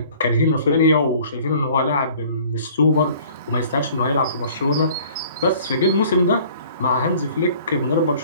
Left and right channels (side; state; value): both; inverted; correlation -0.52